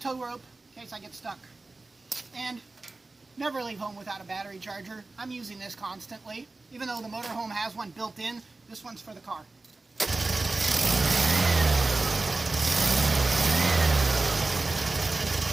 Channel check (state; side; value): quieter; left; 3.3 dB